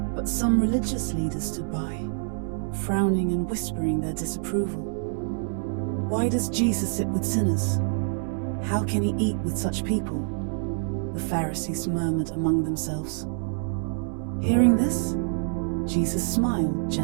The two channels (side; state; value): left; silent; digital silence